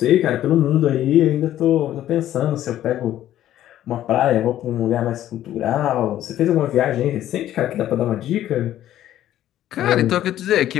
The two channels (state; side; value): quieter; right; 12.6 dB